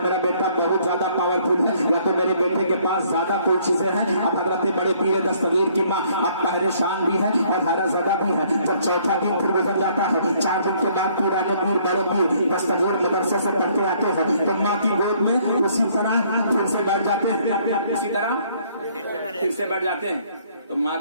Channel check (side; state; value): both; inverted; correlation -0.63